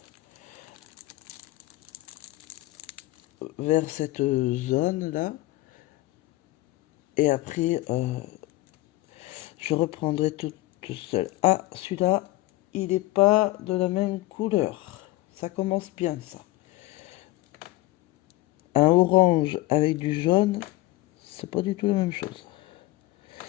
Vers cette zone-là. Et après, je reprendrai tout seul. Ah, celui-là, il n'est pas de la même couleur. Ça commence bien, ça. Un orange avec du jaune, c'est pas du tout la même chose.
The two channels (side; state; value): right; quieter; 18.4 dB